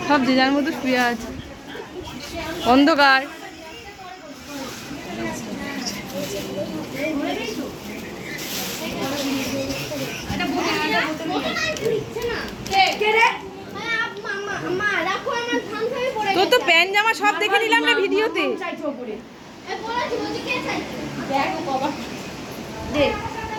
সব যে যার মতো শুয়ে আছে, অন্ধকার। তোর তো প্যান্ট জামা সব দেখে নিলাম না ভিডিওতে।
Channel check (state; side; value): identical; both; correlation 1.00